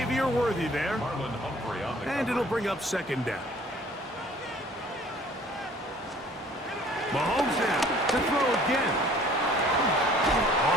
Worthy there. And it'll bring up second down. Mahomes now to throw again.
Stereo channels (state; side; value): normal; both; correlation 0.53